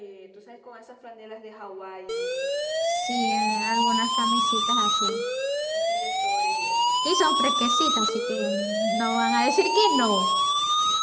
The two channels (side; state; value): both; identical; correlation 1.00